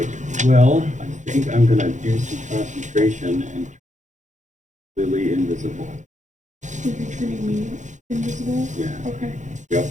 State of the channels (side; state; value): left; late; 0.35 ms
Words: Well, I think I'm gonna do some concentration and Lily invisible. You're turning me invisible? Yeah. Okay. Yep.